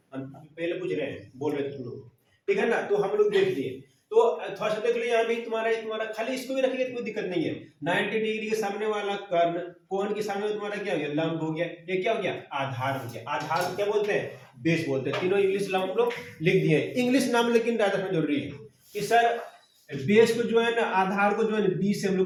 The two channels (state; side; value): identical; both; correlation 1.00